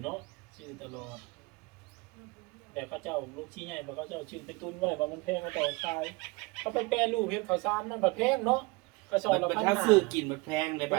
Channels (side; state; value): left; quieter; 25.6 dB